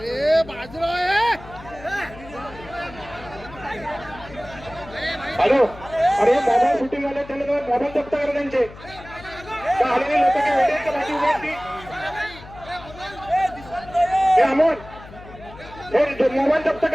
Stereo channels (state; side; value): noise; left; hum, 17 dB below the sound